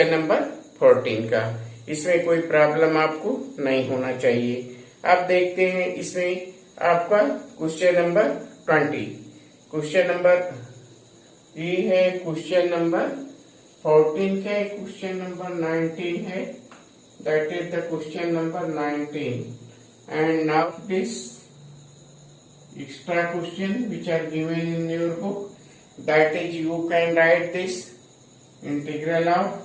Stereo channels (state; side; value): identical; both; correlation 1.00